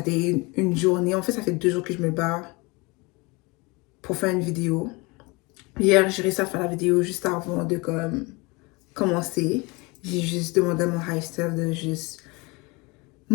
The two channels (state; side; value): quieter; right; 26.0 dB